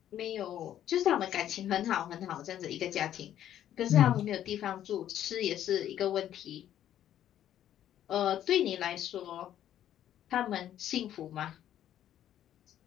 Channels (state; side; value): quieter; right; 11.3 dB